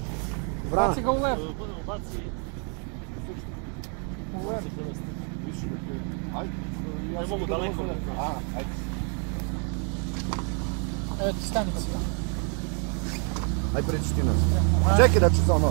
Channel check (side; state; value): left; quieter; 39.7 dB